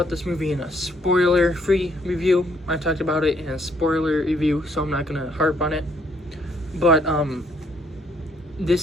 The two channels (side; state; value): both; normal; correlation 0.68